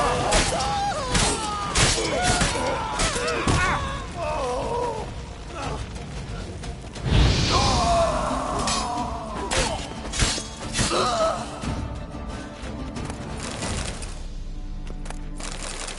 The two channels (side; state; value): both; identical; correlation 1.00